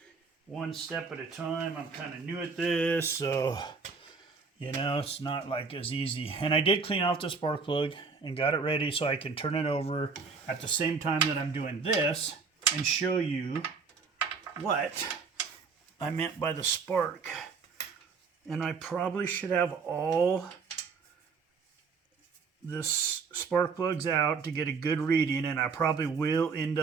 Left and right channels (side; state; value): left; quieter; 5.0 dB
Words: one step at a time. I'm kind of new at this, so, you know, it's not like as easy. And I did clean out the spark plug and got it ready so I can turn it over at the same time that I'm doing this and show you what I meant by the spark. And I probably should have all this spark plugs out to get a good reading, and I probably will end